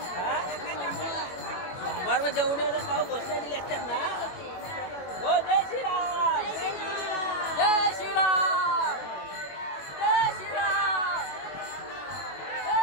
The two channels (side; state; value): right; late; 21 ms